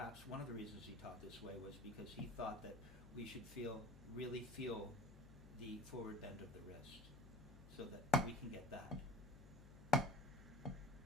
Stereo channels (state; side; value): noise; left; hum, 16 dB below the sound